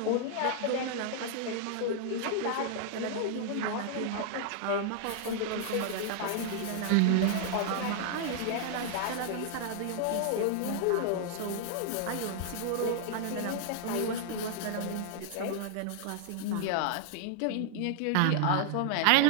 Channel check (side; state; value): both; different; correlation 0.00